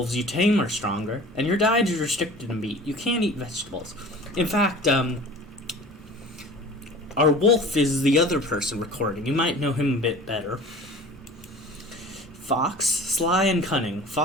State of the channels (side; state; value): both; normal; correlation 0.42